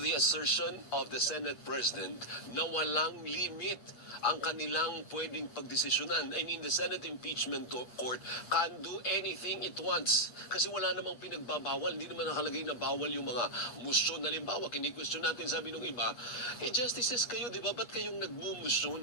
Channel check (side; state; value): right; late; 8.5 ms